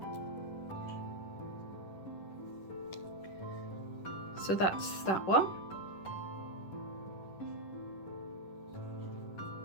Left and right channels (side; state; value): right; late; 10 ms